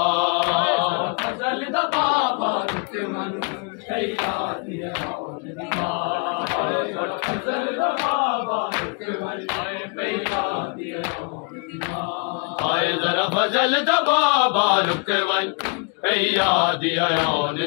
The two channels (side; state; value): right; quieter; 36.9 dB